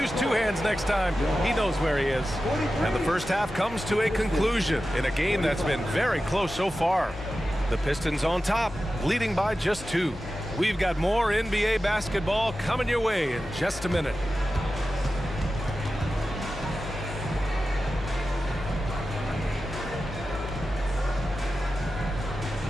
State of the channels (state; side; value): normal; both; correlation 0.93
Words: two hands next time. He knows where he is. And the first half comes to a conclusion in a game that's been very close so far. The Pistons on top, leading by just 2. We've got more NBA basketball coming your way in just a minute.